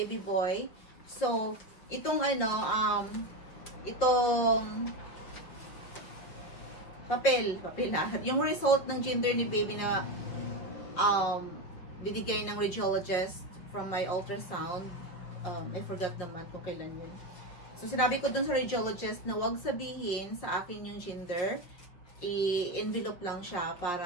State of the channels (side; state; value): right; late; 5.6 ms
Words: boy. So, itong itong papel na. Yung result ng gender ni baby na binigay ng radiologist from my ultrasound. I forgot naman kung kailan yun. So, sinabi ko dun sa radiologist na wag sabihin sa akin yung gender. I-envelope lang siya